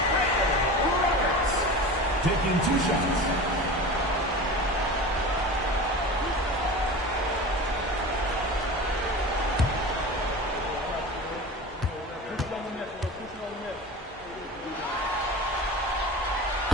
Taking 2 shots.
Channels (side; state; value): both; normal; correlation 0.32